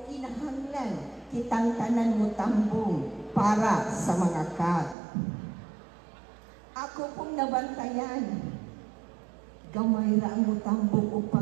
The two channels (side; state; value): left; drops out; at 5.0 s